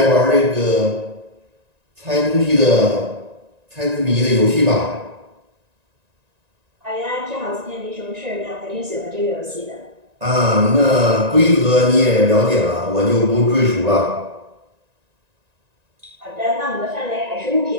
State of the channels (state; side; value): late; left; 1.9 ms